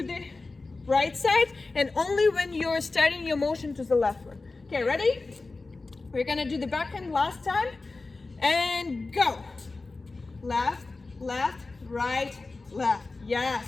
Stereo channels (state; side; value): quieter; right; 3.6 dB